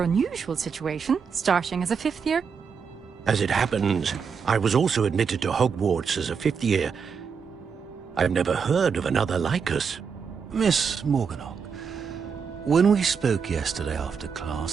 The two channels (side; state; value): left; quieter; 6.1 dB